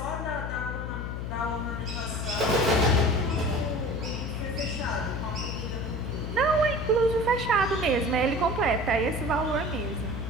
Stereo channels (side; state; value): left; noise; hum, 5 dB below the sound